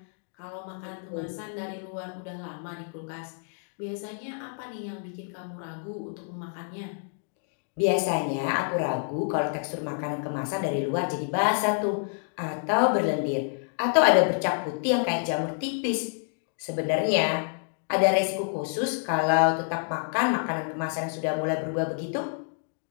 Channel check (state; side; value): silent; right; 59 dB below the other